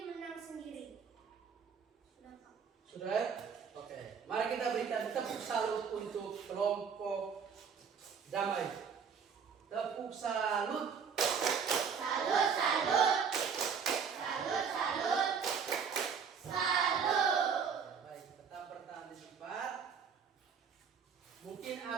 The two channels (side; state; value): left; quieter; 6.5 dB